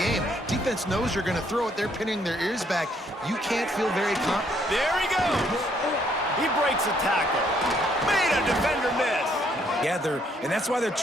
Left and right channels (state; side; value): normal; both; correlation 0.69